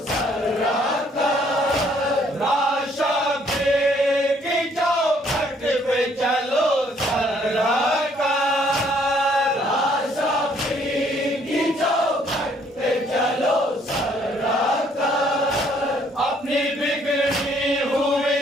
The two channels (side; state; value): both; normal; correlation 0.64